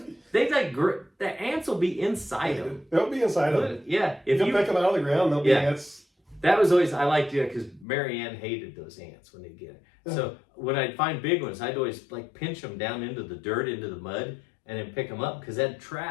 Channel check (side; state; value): right; drops out; at 7.9 s